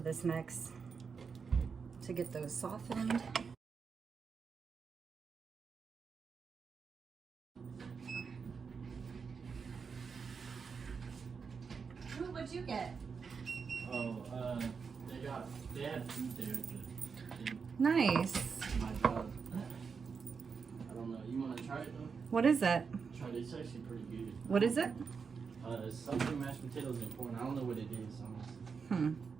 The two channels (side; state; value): left; quieter; 5.6 dB